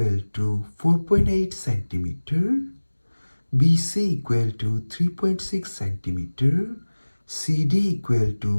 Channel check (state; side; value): inverted; both; correlation -1.00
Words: to 4.8 centimeter, BC equal to 3.6 centimeter, CD equal